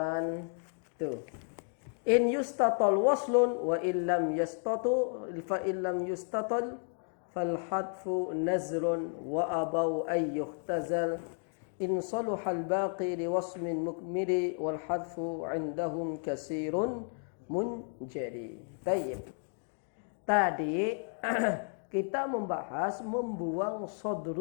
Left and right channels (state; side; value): silent; right; 56 dB below the other